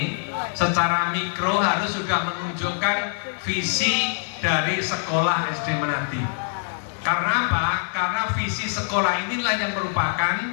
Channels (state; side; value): silent; right; digital silence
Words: secara mikro harus sudah menunjukkan visi dari sekolah SD Menadi. Karena apa? Karena visi sekolah inilah yang merupakan